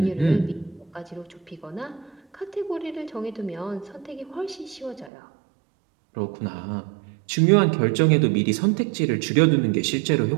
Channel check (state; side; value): drops out; left; at 5.1 s